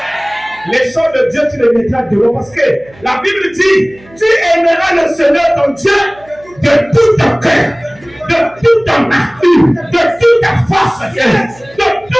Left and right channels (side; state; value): right; noise; hum, 26 dB below the sound